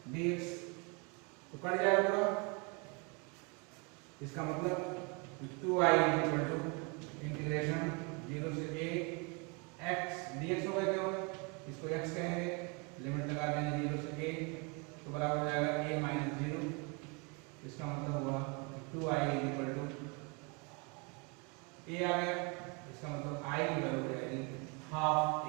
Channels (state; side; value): quieter; left; 32.0 dB